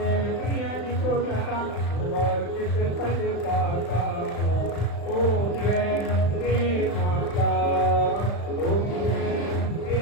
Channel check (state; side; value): late; right; 35 ms